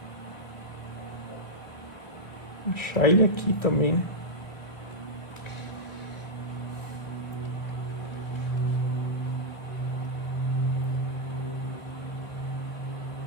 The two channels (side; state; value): right; late; 1.2 ms